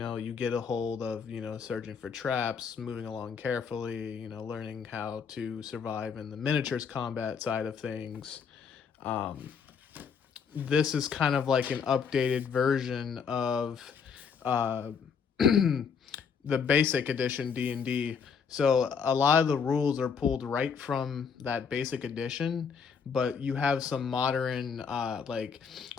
get a hold of searching for traps, moving along carefully, learning how to survive in the miniatures combat side of things. Um, this is kind of like an updated version of uh, the basic edition D&D. So a lot of the rules are pulled right from that basic edition, but you have some modern like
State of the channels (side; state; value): right; quieter; 6.3 dB